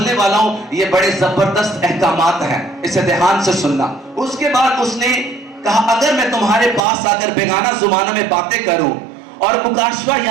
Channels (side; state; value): left; drops out; at 6.8 s